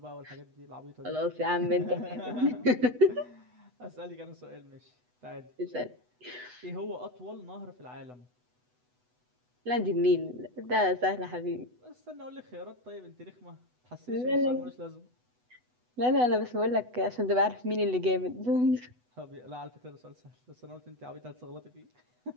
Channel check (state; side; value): late; left; 8.1 ms